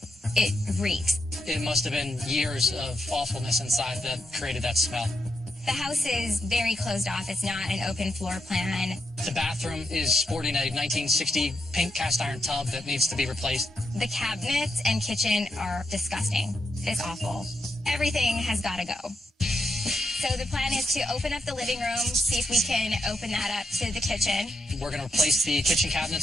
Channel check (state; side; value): normal; both; correlation 0.83